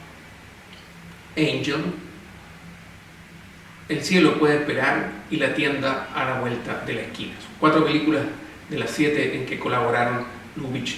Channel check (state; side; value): identical; both; correlation 1.00